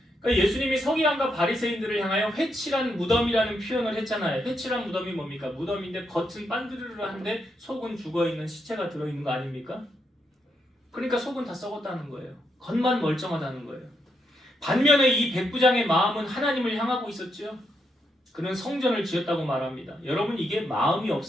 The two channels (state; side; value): normal; both; correlation 0.80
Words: 그러니까 예수님이 서기관과 바리새인들을 향하여 회칠한 무덤이라는 표현을 했잖아요. 회칠한 무덤이 뭡니까? 무덤인데 겉은 반드르르한데 속은 죽어있는 시체가 들어있는 거 아닙니까? 그러니까 속은 다 썩었다는 거예요. 겉만 멀쩡하다는 거예요. 반면에 이 백부장의 마음은 하나님을 향하고 있었죠. 그는 성전을 지었다고 말합니다. 여러분 이게 마음이